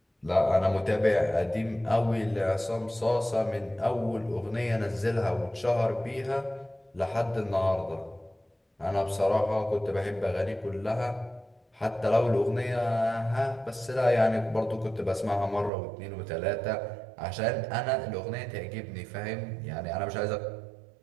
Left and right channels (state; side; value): drops out; left; at 15.7 s